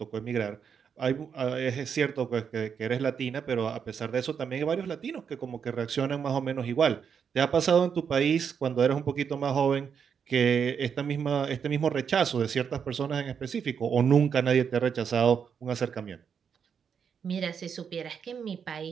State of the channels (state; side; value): quieter; left; 7.1 dB